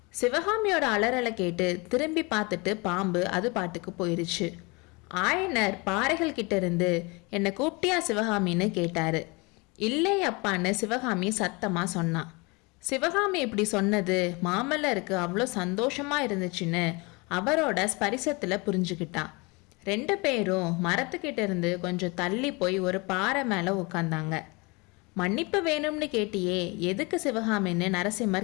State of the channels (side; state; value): right; quieter; 27.4 dB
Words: சிவகாமியோட அலறலை கேட்டு திரும்பி பார்த்துட்டு பாம்பு அது பாட்டுக்கு போயிருச்சு. ஆயனர் பாறைகள் கிட்ட இருந்து என்னை கூப்பிட்டியா சிவகாமின்னு கேட்டாரு. இல்லை அப்பான்னு சிவகாமி சத்தமா சொன்னான். சிவகாமி இப்படி சொன்னது மாமல்லருக்கு அவ்வளோ சந்தோஷமா இருந்துச்சுன்னு அவரோட ஸ்பரிசத்துல புரிஞ்சுக்கிட்டான். 2 பேரும் மரத்துக்கிட்ட இருந்து கொஞ்சம் தள்ளி போய் ஒரு பாறை மேல உட்காந்தாங்க. மன்னிப்பு வேணும்னு கேட்டியே, எதுக்கு சிவகாமின்னு